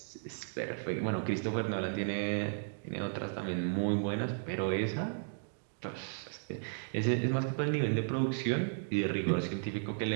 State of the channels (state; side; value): silent; left; digital silence